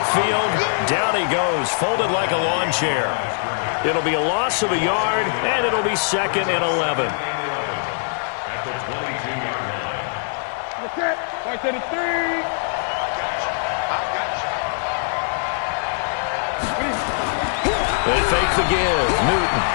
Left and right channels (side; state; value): right; silent; 60 dB below the other